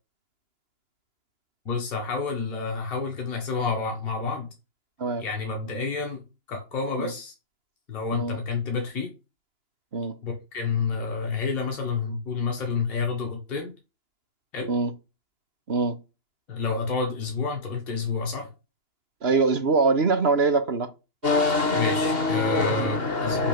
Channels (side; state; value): left; late; 2.8 ms